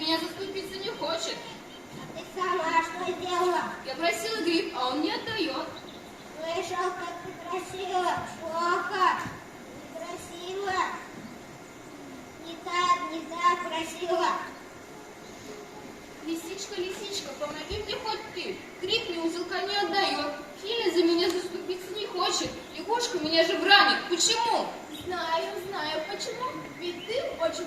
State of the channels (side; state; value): both; identical; correlation 1.00